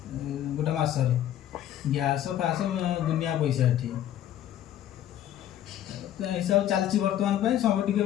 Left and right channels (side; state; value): right; quieter; 11.5 dB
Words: गोटा मास रे गैस फास दुनिया पैसा एठी तो हिसाब चलची वर्तमान पे सब टिके